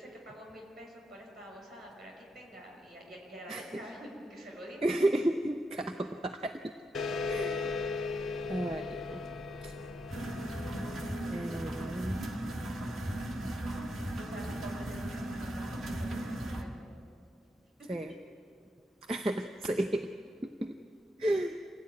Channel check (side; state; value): both; normal; correlation 0.84